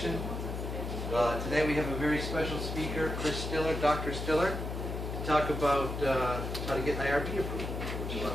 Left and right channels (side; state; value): left; noise; hum, 4 dB below the sound